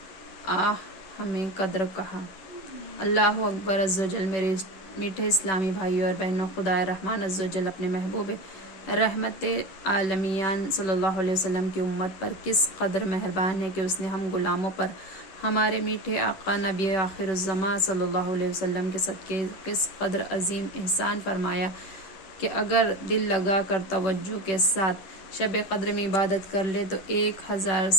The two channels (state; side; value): late; right; 10 ms